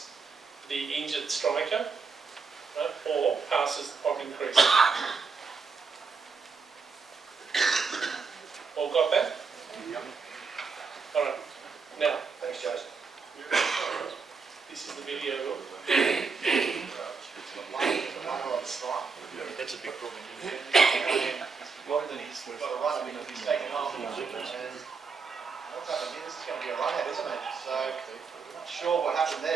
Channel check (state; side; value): quieter; left; 5.0 dB